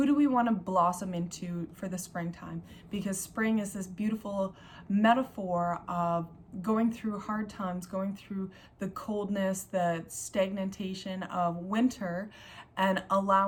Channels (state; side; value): identical; both; correlation 1.00